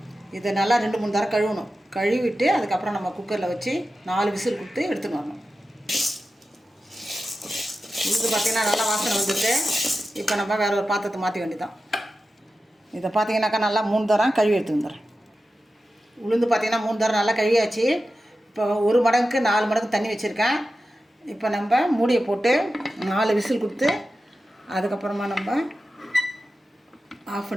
இதை நல்லா 2-3 தடவை கழுவணும். கழுவிட்டு அதுக்கப்புறம் நம்ம குக்கரில் வச்சு 4 விசில் கொடுத்து எடுத்துன்னு வரணும். உளுந்து பார்த்திங்கன்னா நல்லா வாசனை வந்துட்டு இப்போ நம்ம வேறு ஒரு பாத்திரத்தை மாற்றி வேண்டியதான். இதை பார்த்தீங்கன்னாக்கா நல்லா 3 தரம் கழுவி எடுத்து வந்துடுறேன். உளுந்து பார்த்திங்கன்னா 3 தரம் நல்லா கழுவியாச்சு. இப்போ 1 மடங்குக்கு 4 மடங்கு தண்ணி வச்சுருக்கேன். இப்போ நம்ம மூடியை போட்டு 4 விசில் கொடுத்து அதுக்கப்புறமா நம்ம ஆஃப்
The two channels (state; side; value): normal; both; correlation 0.93